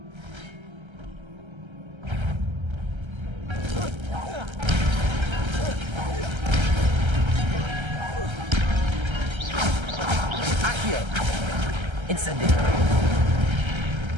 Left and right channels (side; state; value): left; late; 1.3 ms